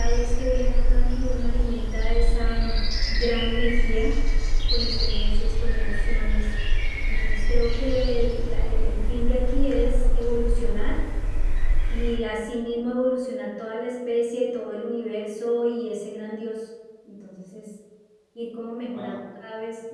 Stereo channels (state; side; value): identical; both; correlation 1.00